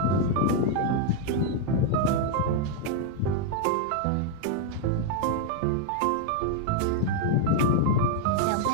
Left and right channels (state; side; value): different; both; correlation 0.00